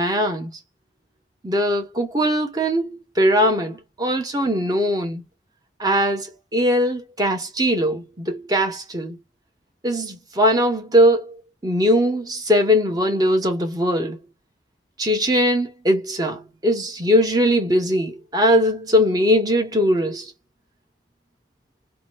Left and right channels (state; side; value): normal; both; correlation 0.42